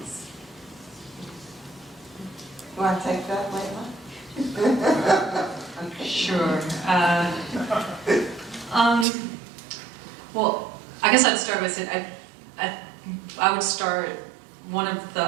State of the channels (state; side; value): drops out; left; at 9.1 s